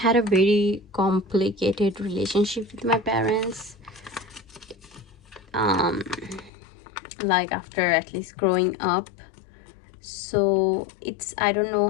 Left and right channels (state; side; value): drops out; right; at 6.5 s